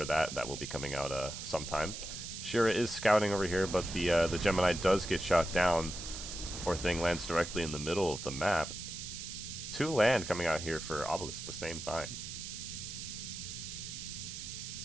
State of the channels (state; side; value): noise; right; hiss, 8 dB below the sound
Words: that will be coming out sometime. Shira is scouting over here, but the Gemini does get shot down. Poor thing lands directly in the middle of the map. 2 land coming out here for Obelis at the same time,